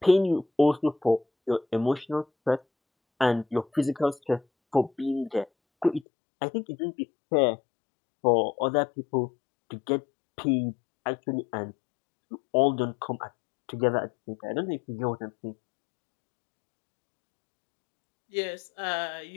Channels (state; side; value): drops out; right; at 6.1 s